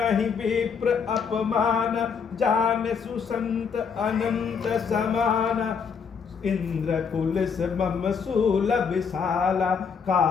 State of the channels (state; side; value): quieter; right; 6.2 dB